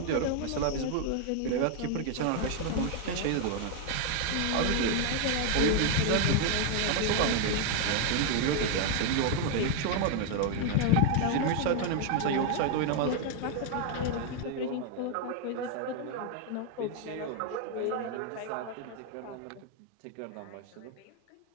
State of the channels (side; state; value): both; different; correlation 0.01